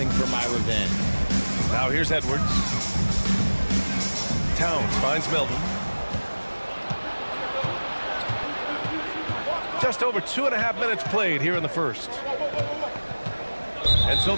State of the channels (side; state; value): both; inverted; correlation -1.00